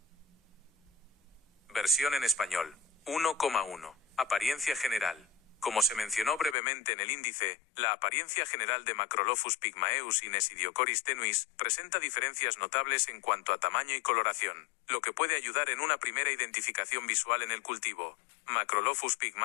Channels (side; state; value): right; drops out; at 6.6 s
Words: Versión en español. 1,1. Apariencia general. Como se mencionó brevemente en el índice, la apariencia general de Macrolophus pygmaeus y Nesidiocoris tenuis presenta diferencias notables en cuanto a tamaño y coloración, lo que puede ayudar en una primera identificación visual en el cultivo. Macrolophus